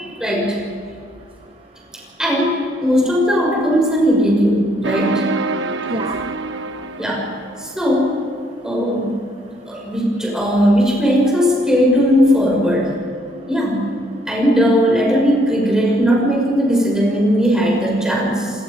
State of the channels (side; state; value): both; normal; correlation 0.69